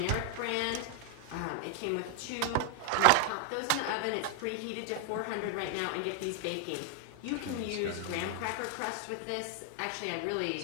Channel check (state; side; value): different; both; correlation 0.00